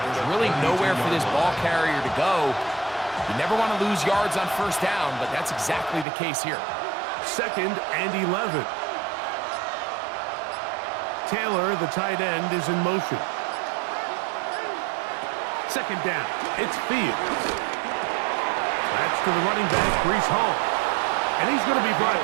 There's really nowhere for this ball carrier to go. You never want to lose yards on 1st down, but that's exactly the case here. 2nd and 11. Taylor, the tight end, is in motion. 2nd down. It's Fields. That's to the running back, Breece Hall. And he's going to be brought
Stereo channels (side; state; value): left; drops out; at 6.1 s